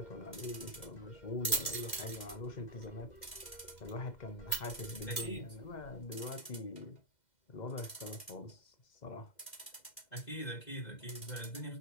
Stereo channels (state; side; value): late; right; 2.0 ms